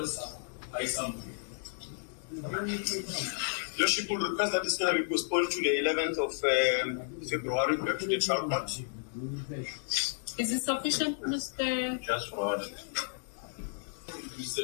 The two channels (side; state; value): right; silent; digital silence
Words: Lordship will request that this matter be postponed to the 11th of February back to the trial court. Is it sufficient, Mr. Just for order.